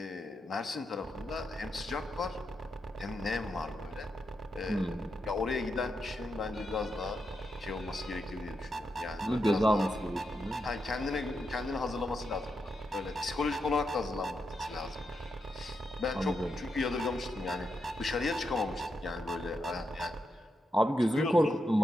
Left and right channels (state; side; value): normal; both; correlation 0.84